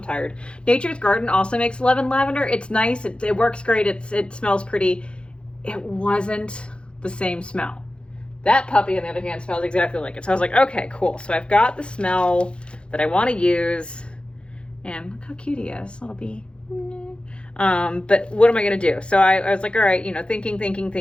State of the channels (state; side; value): late; right; 0.056 ms